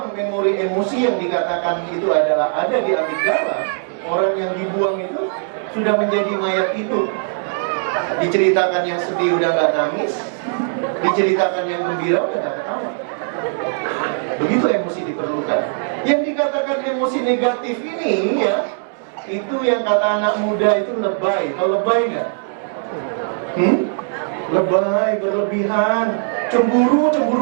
memori emosi yang dikatakan itu adalah ada di amigdala. Orang yang dibuang itu sudah menjadi mayat itu. Diceritakan yang sedih udah gak nangis, diceritakan yang gembira udah gak ketawa. Begitu emosi diperlukan. Yang dikatakan emosi negatif ini, ya, itu yang kata anak muda itu lebay. Tahu lebay nggak? Lebay, berlebihan, cemburu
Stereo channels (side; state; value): left; silent; 66 dB below the other